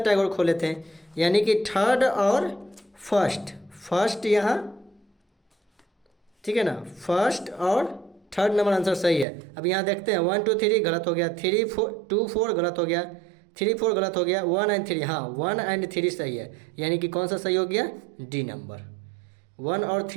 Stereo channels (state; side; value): drops out; left; at 9.2 s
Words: Tagore खोले थे। यानी कि थर्ड और फर्स्ट यहाँ, ठीक है ना, फर्स्ट और थर्ड नंबर आंसर सही है। अब यहाँ देखते हैं 1 2 3 गलत हो गया, 3 2 4 गलत हो गया, 3 4 गलत हो गया, 1 एंड 3, हाँ 1 एंड 3 सही है। यानी कि कौन सा सही हो गया, डी नंबर। 1 और